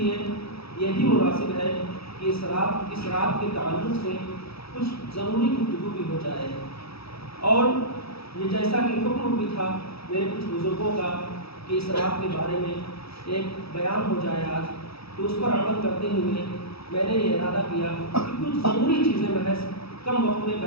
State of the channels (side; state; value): right; late; 0.77 ms